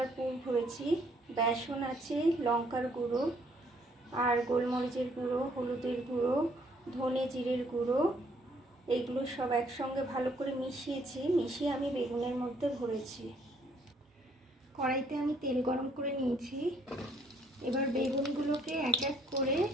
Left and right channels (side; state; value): both; normal; correlation 0.65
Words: পুর ভরেছি। বেসন আছে, লঙ্কার গুঁড়ো আর গোলমরিচের গুঁড়ো, হলুদের গুঁড়ো, ধনে জিরের গুঁড়ো, এইগুলো সব একসঙ্গে ভালো করে মিশিয়ে আমি বেগুনের মধ্যে ভরেছি। কড়াইতে আমি তেল গরম করে নিয়েছি। এবার বেগুনগুলোকে এক এক করে